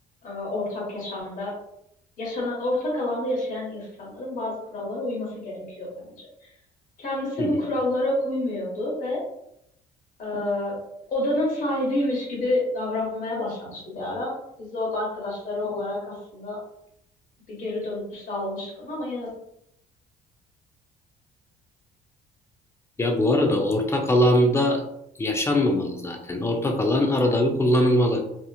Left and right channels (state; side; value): normal; both; correlation 0.60